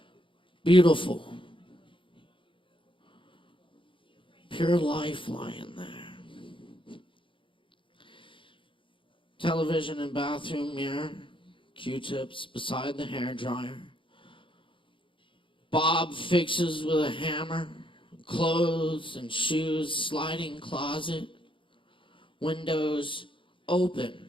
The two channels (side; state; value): right; late; 0.25 ms